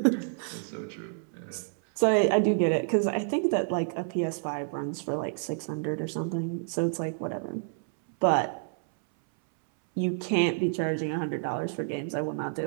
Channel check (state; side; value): silent; left; 58 dB below the other